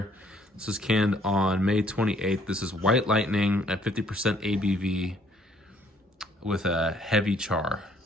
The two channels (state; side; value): normal; both; correlation 0.63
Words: this is canned on May 28th. This is White Lightning at 50% ABV with a heavy char.